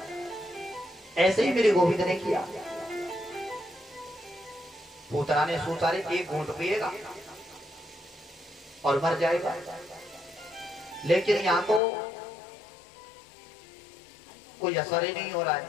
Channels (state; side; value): drops out; right; at 11.8 s